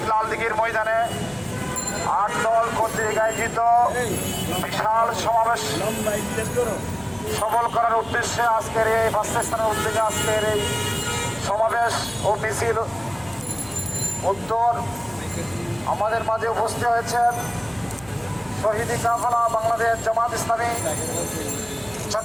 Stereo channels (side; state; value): left; noise; hum, 22 dB below the sound